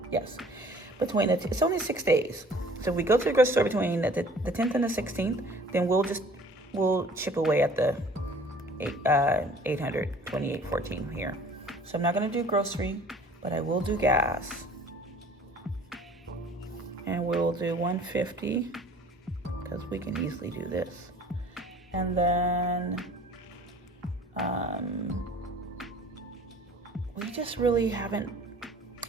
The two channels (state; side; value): normal; both; correlation 0.51